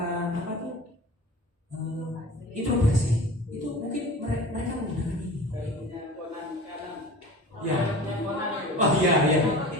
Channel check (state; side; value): normal; both; correlation 0.38